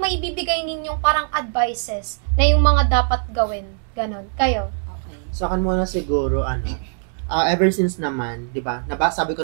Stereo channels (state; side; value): silent; left; digital silence